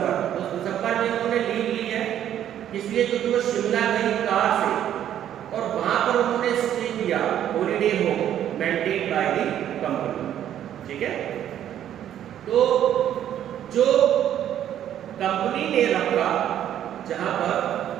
तो दिसंबर में उन्होंने लीव ली है, इसलिए क्योंकि वो शिमला गई कार से और वहां पर उन्होंने स्टे किया, holiday home maintain by the company, ठीक है। तो जो कंपनी ने रखा जहां पर,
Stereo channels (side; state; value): left; quieter; 10.7 dB